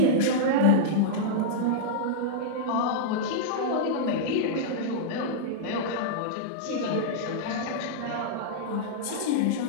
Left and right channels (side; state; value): both; different; correlation -0.03